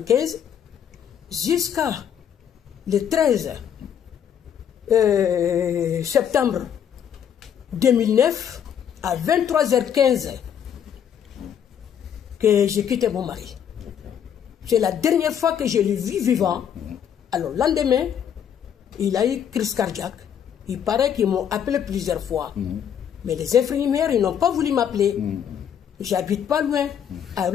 jusqu'à le 13 septembre 2009 à 23h15 que j'ai quitté mon mari. C'est la dernière fois que je l'ai vu vivant. Alors, le lendemain, il a eu crise cardiaque. Il paraît qu'ils m'ont appelé plusieurs fois. Mais les infirmières, ils n'ont pas voulu m'appeler. J'habite pas loin. À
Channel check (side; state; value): right; quieter; 8.8 dB